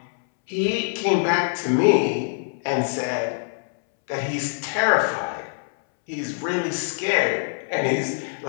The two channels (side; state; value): right; silent; 63 dB below the other